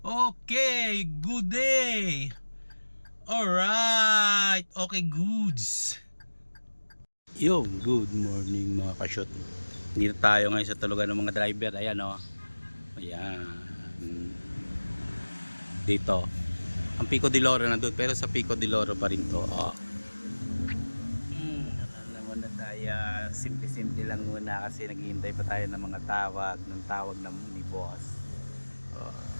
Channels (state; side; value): inverted; both; correlation -1.00